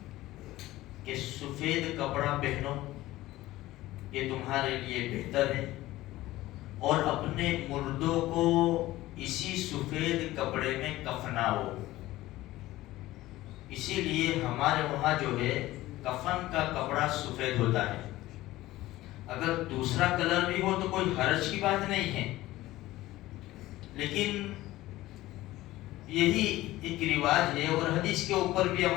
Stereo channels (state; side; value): quieter; right; 16.8 dB